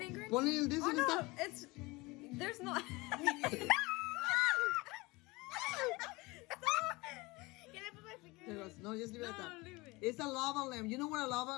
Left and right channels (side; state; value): right; quieter; 23.4 dB